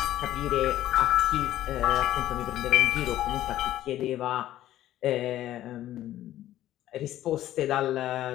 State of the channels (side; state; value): right; quieter; 13.5 dB